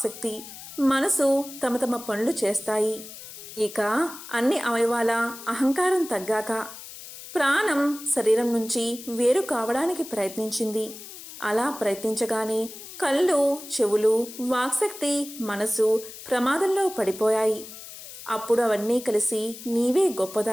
మనసు తమ తమ పనులు చేస్తాయి. ఇక అన్ని అవయవాల అహంకారం తగ్గాక ప్రాణం శరీరం నుంచి వేరు కావడానికి ప్రయత్నించింది. అలా ప్రయత్నించగానే కళ్ళు, చెవులు, వాక్శక్తి, మనసు ప్రమాదంలో పడిపోయాయి. అప్పుడు అవన్నీ కలిసి నీవే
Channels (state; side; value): noise; left; hiss, 14 dB below the sound